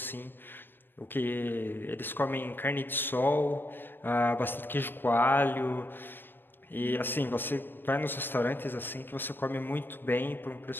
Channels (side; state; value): right; late; 0.097 ms